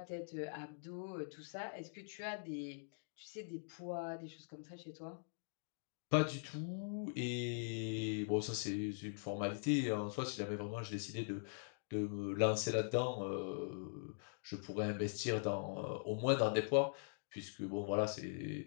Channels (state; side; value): silent; right; digital silence